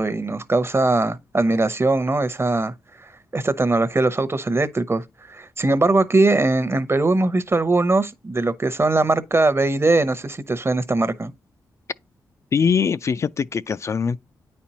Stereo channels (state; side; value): normal; both; correlation 0.84